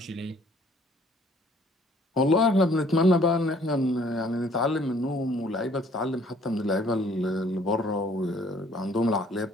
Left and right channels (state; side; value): normal; both; correlation 0.59